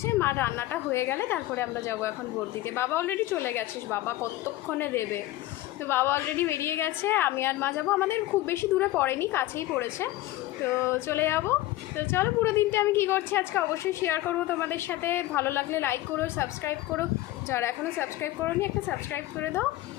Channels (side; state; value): right; quieter; 16.3 dB